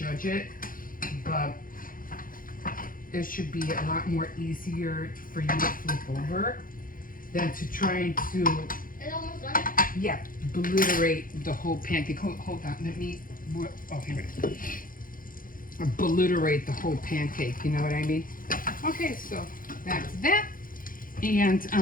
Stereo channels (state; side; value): late; right; 0.40 ms